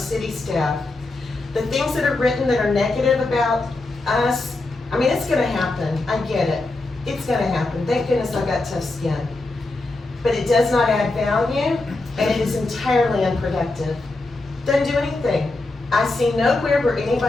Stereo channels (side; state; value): right; quieter; 3.1 dB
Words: staff. The things that are written that are negative about us, I mean, it's gonna happen. I get it. It's gonna happen. Thank goodness I've got tough skin. But it does not add value, and it is entirely unproductive. Doesn't do anything. I see nowhere where